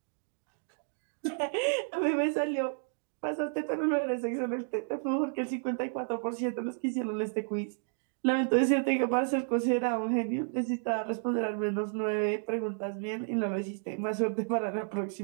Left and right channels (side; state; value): left; silent; digital silence